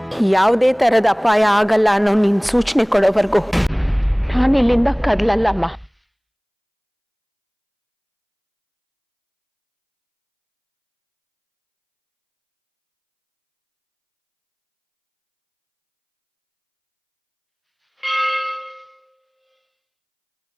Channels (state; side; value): identical; both; correlation 1.00